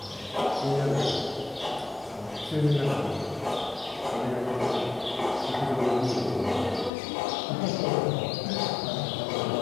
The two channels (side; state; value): right; drops out; at 6.9 s